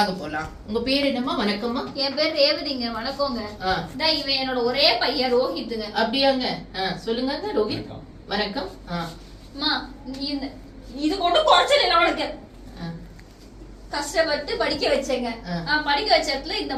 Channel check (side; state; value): both; identical; correlation 1.00